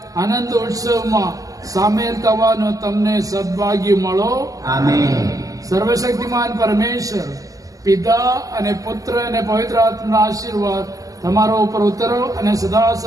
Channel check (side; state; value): left; late; 0.17 ms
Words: આનંદ ઉત્સવમાં સામેલ થવાનો તમને સદભાગ્ય મળો. આમેન. સર્વશક્તિમાન પરમેશ્વર પિતા અને પુત્ર અને પવિત્ર આત્માના આશીર્વાદ તમારો ઉપર ઉતરો અને સદા